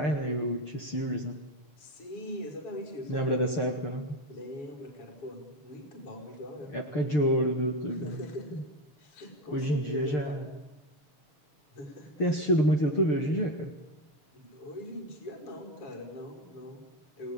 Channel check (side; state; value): right; late; 6.7 ms